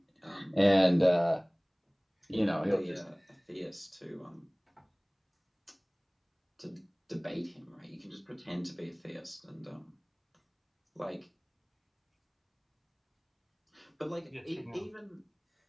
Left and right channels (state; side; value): identical; both; correlation 1.00